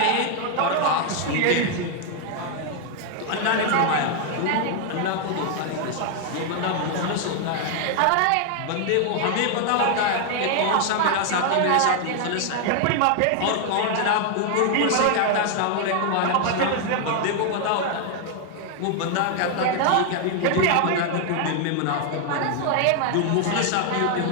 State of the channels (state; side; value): different; both; correlation 0.00